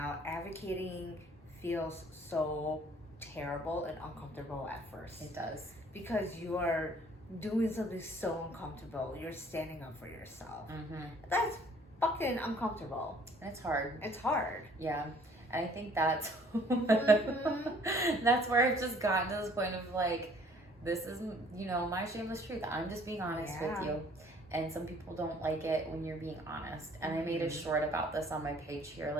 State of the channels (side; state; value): both; normal; correlation 0.57